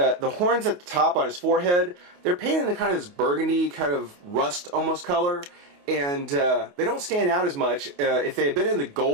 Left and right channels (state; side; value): late; left; 28 ms